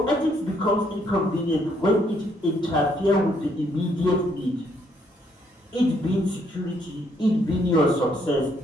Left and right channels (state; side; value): normal; both; correlation 0.70